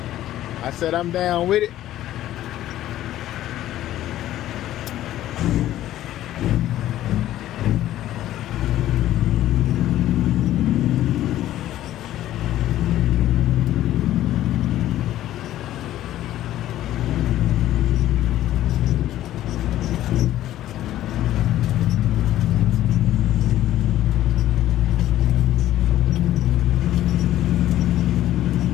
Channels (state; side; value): quieter; right; 13.4 dB